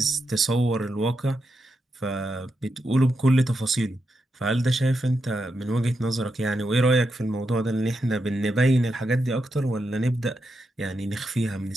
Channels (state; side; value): normal; both; correlation 0.85